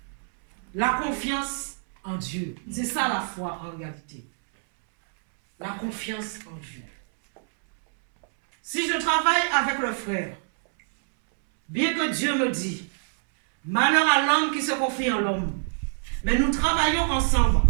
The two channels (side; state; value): left; silent; 61 dB below the other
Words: La confiance en Dieu. C'est ça la foi en réalité. La confiance en Dieu. Si je travaille avec le frère, bien que Dieu me dit, malheur à l'homme qui se confie en l'homme, mais nous travaillons ensemble.